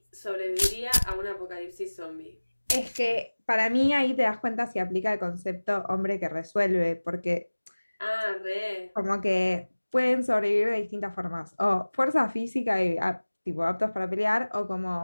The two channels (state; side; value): inverted; both; correlation -1.00